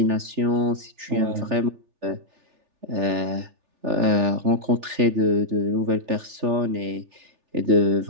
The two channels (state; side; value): late; left; 3.4 ms